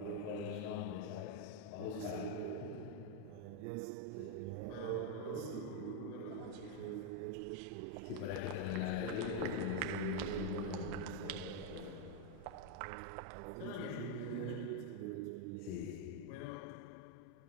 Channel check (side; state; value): both; different; correlation 0.01